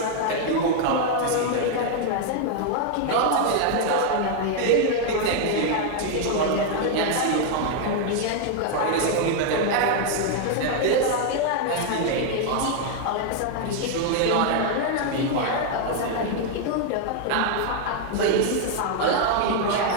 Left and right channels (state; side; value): different; both; correlation 0.00